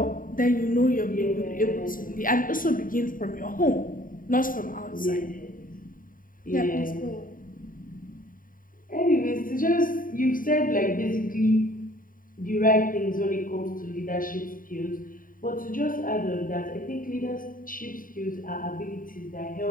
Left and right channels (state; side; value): late; right; 0.40 ms